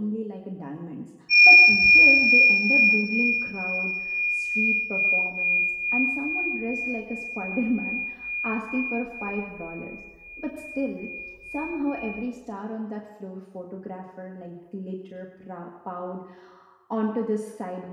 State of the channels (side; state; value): both; identical; correlation 1.00